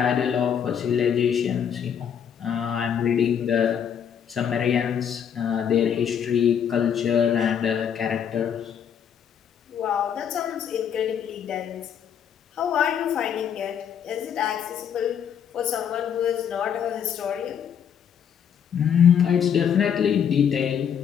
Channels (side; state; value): right; quieter; 8.3 dB